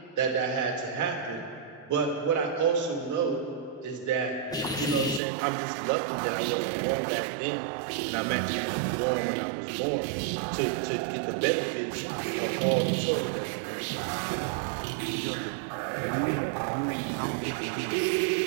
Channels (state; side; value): drops out; left; at 5.2 s